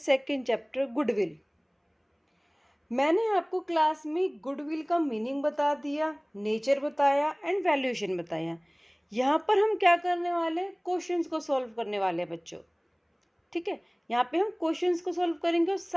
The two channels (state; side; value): identical; both; correlation 1.00